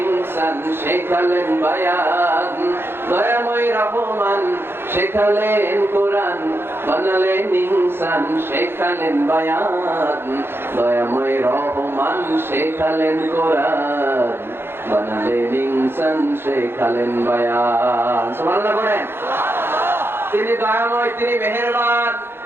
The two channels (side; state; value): left; late; 0.11 ms